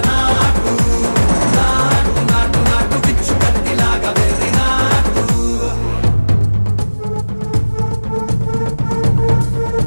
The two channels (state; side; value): inverted; both; correlation -1.00